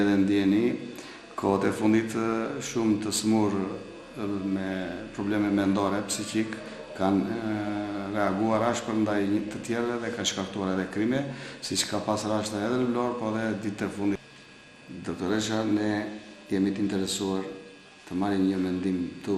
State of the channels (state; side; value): identical; both; correlation 1.00